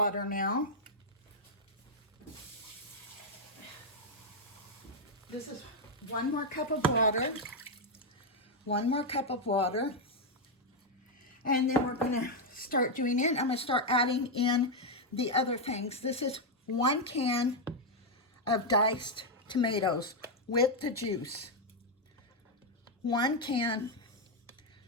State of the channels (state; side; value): normal; both; correlation 0.01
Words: now. This is 1 more cup of water. 1 more cup of water. And then we're going to start doing it. I'm going to start adding in the other things. This is 1 can of diced tomatoes with the juice. 1 can